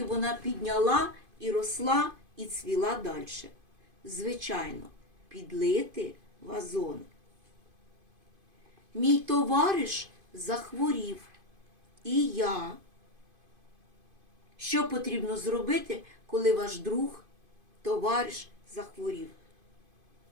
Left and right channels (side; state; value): left; late; 2.5 ms